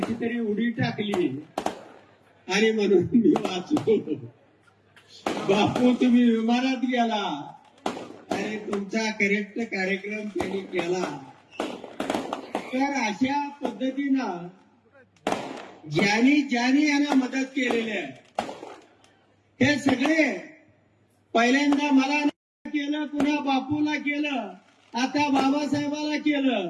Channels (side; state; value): both; identical; correlation 1.00